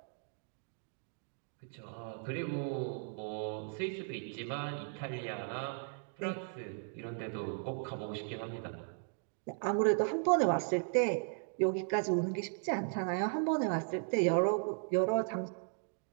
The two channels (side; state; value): left; silent; 53 dB below the other